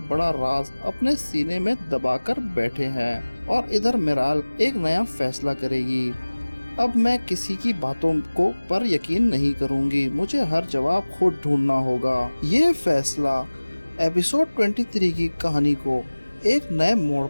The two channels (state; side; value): inverted; both; correlation -1.00